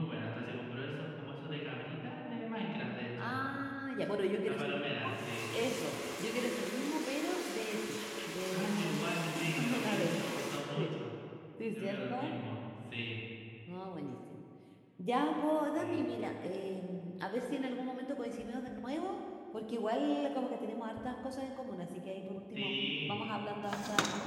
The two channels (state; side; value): identical; both; correlation 1.00